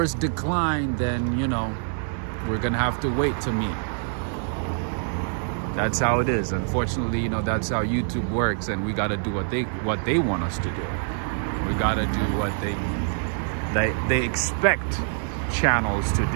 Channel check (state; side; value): silent; left; digital silence